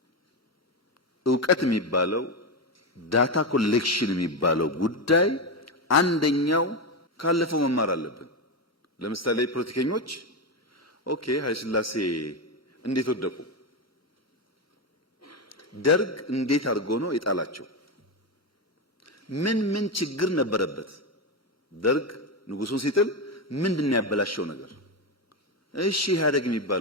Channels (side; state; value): both; normal; correlation 0.11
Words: ዕውቀት የሚባለው ዳታ ኮሌክሽን የሚባለው ጉዳይ አንደኛው ካለፈው መማር አለብን። ለምሳሌ ፖለቲከኞች ኦኬ ኃይለ ሥላሴ እንዴት ወደቁ? ደርግ እንዴት አድርጎ ነው የጣላቸው? ምን ችግር ነበረበት? ደርግ ንጉሱን ሲጥል ምንድነው ያበላሸው ነገር? እሺ ኢህአዴግ